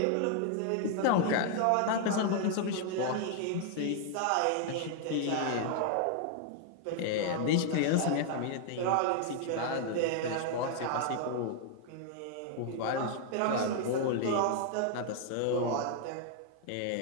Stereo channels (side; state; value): both; different; correlation 0.00